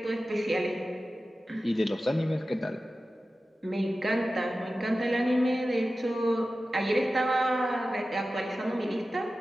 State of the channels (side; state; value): both; normal; correlation 0.95